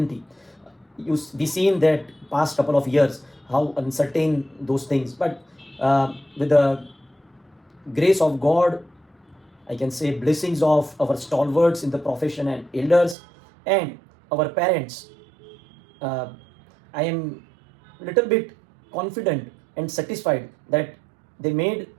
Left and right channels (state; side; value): drops out; left; at 13.2 s